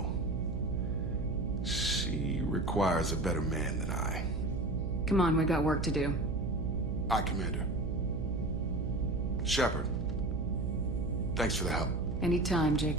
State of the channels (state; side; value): noise; right; hum, 1 dB below the sound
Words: She requires a better man than I. Come on, we got work to do. Aye, Commander. Shepard, Thanks for the help. Anytime,